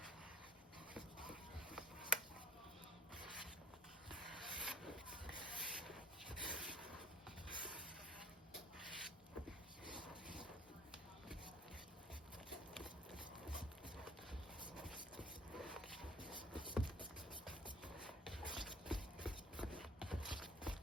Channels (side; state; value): both; normal; correlation 0.54